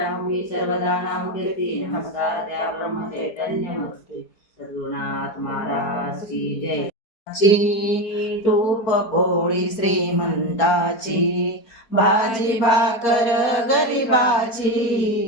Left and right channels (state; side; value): late; right; 4.5 ms